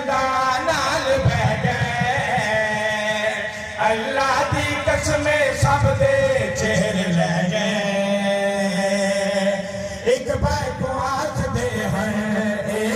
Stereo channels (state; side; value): identical; both; correlation 1.00